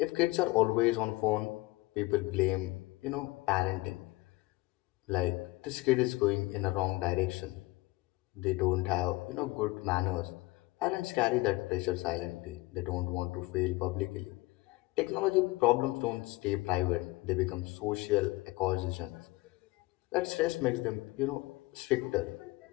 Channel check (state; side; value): quieter; right; 20.6 dB